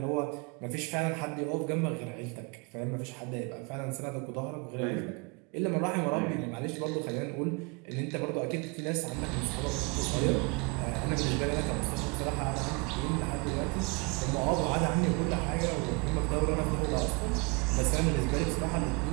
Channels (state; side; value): quieter; left; 30.4 dB